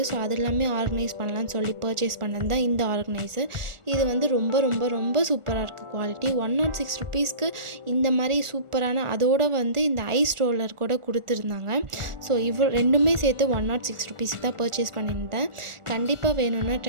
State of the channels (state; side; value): late; left; 1.4 ms